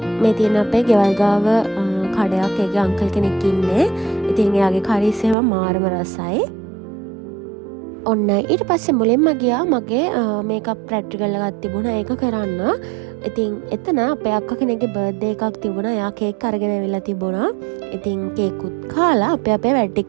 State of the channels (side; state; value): left; drops out; at 5.4 s